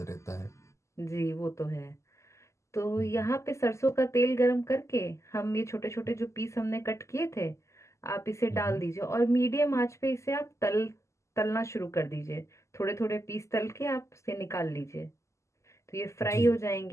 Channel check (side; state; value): right; late; 0.14 ms